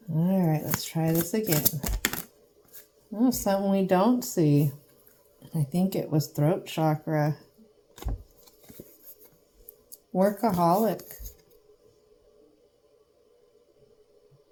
All right, let's try this again. Oh, something we don't see. I think it was throat chakra. Workaholic.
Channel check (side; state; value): both; identical; correlation 1.00